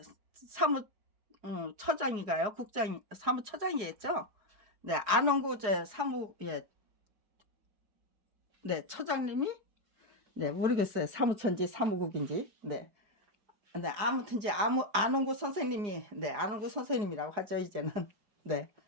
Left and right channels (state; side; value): late; left; 4.9 ms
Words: 처장인가요? 사무처장이겠죠? 네, 안홍구 예, 네, 처장님이, 네, 모르겠어요. 사무처인지 사무국인지. 네. 네, 아무튼 이제 안홍구 선생님이, 네, 안홍구 선생님이라고 하죠, 이제는. 네.